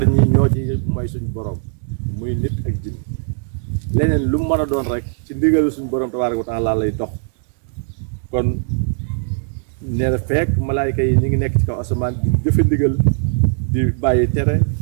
ñi ñoo ci mooy suñu borom muy nit ak jinn leneen lu mu mën a doon rek ci ndigal suñu borom tabaaraka wa taala lay dox kon nee na fekk malaayka yi ñu ngi nekk ci kaw asamaan di jëfe ndigal di bàyyi tere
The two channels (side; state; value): left; silent; digital silence